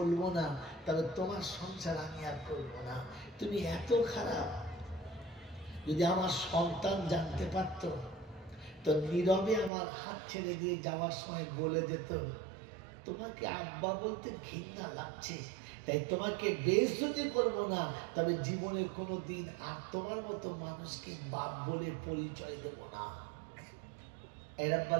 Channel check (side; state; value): left; drops out; at 9.7 s